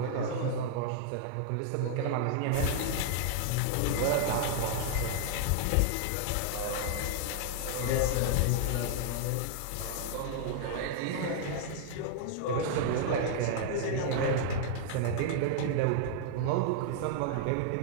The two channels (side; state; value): both; different; correlation -0.01